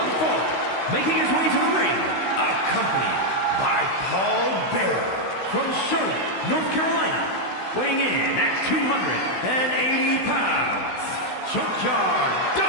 fall. Making his way to the ring, accompanied by Paul Bearer from Charlotte, North Carolina. Weighing in at 280 pounds, Junkyard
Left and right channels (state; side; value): late; right; 16 ms